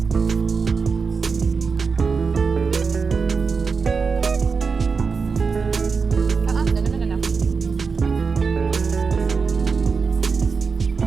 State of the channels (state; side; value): quieter; left; 5.1 dB